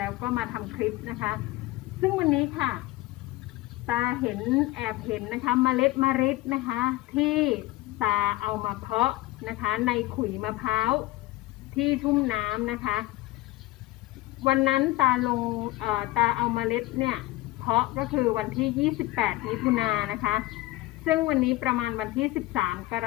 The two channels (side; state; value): right; quieter; 18.4 dB